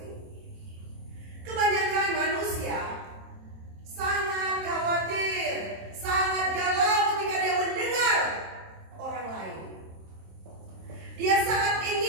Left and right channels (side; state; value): left; late; 27 ms